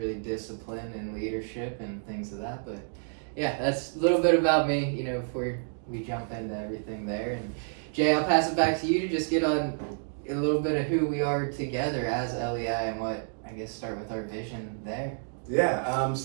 discipline and leadership and things of that. But yeah, that's a little bit about me, before we jump into everything there. And Jay, I'll pass it back to you to just get on a little bit of who we are together as LEI, and what, I guess, start with our vision there. Yeah,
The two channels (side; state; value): left; silent; digital silence